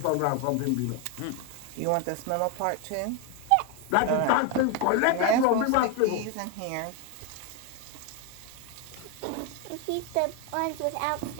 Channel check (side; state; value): both; different; correlation 0.02